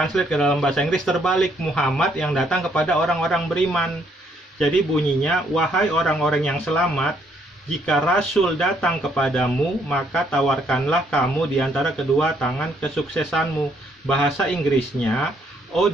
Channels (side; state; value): both; normal; correlation 0.69